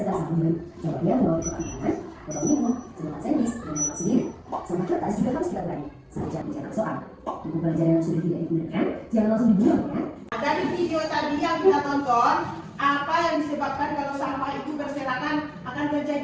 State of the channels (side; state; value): both; identical; correlation 1.00